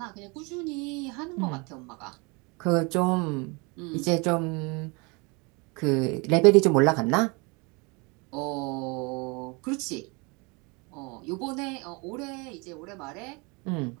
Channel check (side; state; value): left; quieter; 29.1 dB